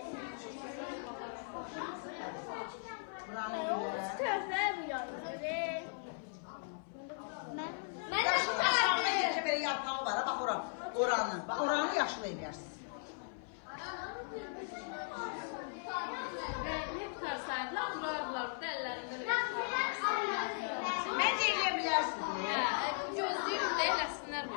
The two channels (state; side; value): silent; right; 53 dB below the other